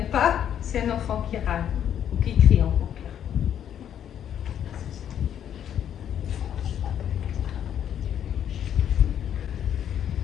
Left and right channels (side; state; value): right; quieter; 9.7 dB